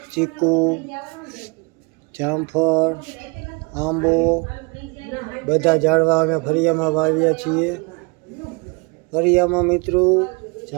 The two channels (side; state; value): left; quieter; 29.3 dB